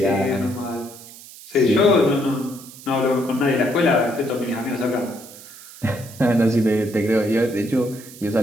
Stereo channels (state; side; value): noise; right; hiss, 18 dB below the sound